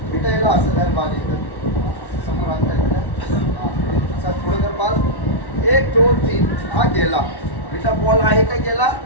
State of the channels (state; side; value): late; right; 1.1 ms